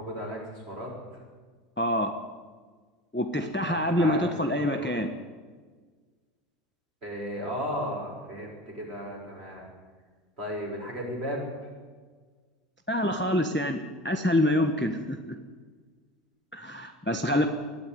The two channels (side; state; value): both; normal; correlation 0.36